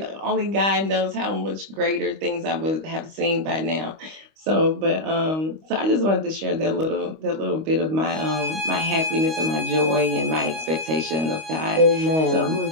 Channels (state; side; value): late; left; 25 ms